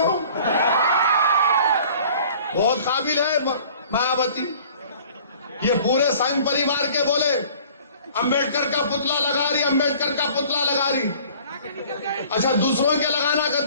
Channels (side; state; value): both; inverted; correlation -0.50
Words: بہت قابل ہے مایاوتی۔ یہ پورے سنگھ پریوار کے بولے امبیڈکر کا پتلا لگا رہی، امبیڈکر کا پتلا لگا رہی۔ اچھا دوسروں کے لگانا